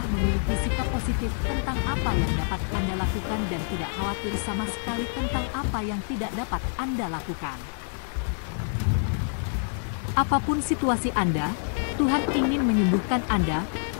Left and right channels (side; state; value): right; silent; 60 dB below the other